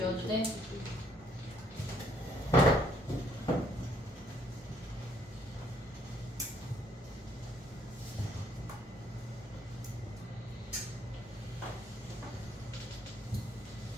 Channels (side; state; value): both; normal; correlation 0.67